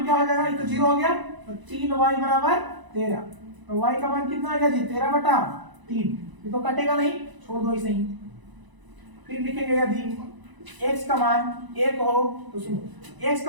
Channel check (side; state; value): left; late; 1.0 ms